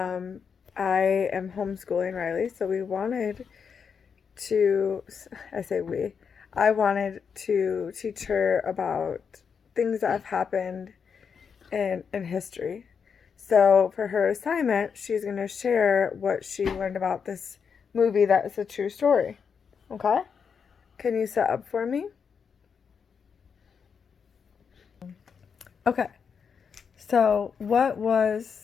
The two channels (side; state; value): right; quieter; 6.4 dB